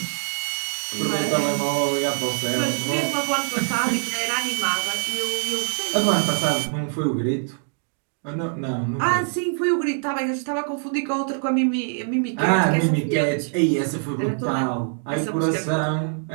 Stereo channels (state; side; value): silent; left; 60 dB below the other